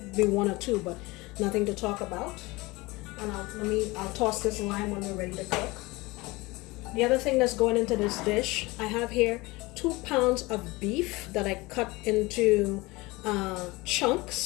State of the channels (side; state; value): right; quieter; 22.6 dB